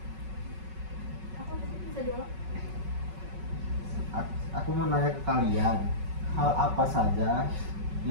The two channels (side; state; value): left; late; 5.3 ms